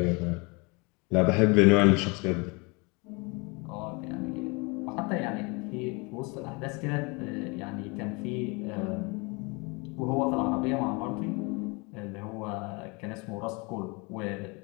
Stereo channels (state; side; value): quieter; right; 28.9 dB